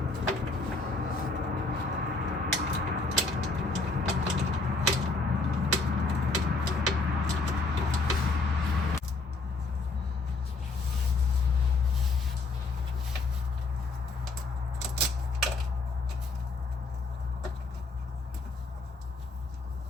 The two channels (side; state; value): right; quieter; 3.6 dB